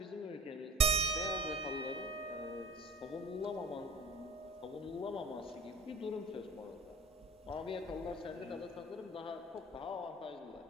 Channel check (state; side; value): normal; both; correlation 0.40